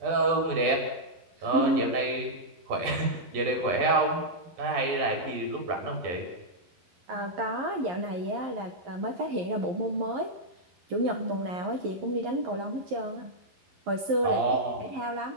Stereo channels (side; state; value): left; late; 12 ms